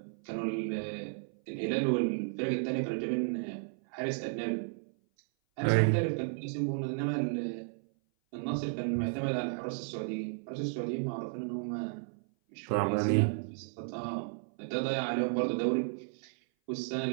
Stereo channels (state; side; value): silent; left; 55 dB below the other